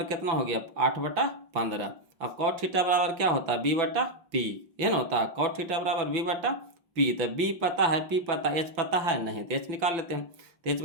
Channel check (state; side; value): late; left; 6.0 ms